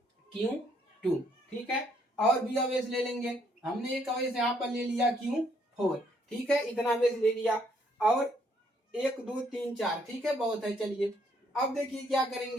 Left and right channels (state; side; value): normal; both; correlation 0.69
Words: Q2। ठीक है, और भी आवेश ले लेंगे। हमने एक आवेश यहाँ पर ले लिया Q4। ठीक है, इतना आवेश ले लिया। और 1 2 3 4। ठीक है, बहुत है। चलिए अब देखिए क्या